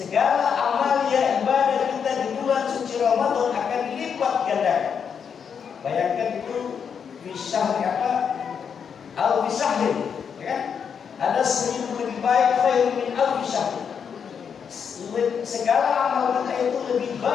amalia ibadah kita di bulan suci Ramadan akan dilipat gandakan. Bayangkan itu bisah apa? Al-Bisahir, ya kan? Ada 1000 lebih baik khairun min al-bisahir. Segala amal kita itu lebih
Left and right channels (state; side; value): quieter; right; 7.0 dB